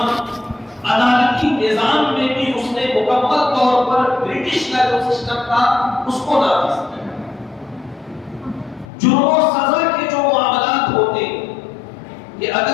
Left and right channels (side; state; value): right; drops out; at 8.8 s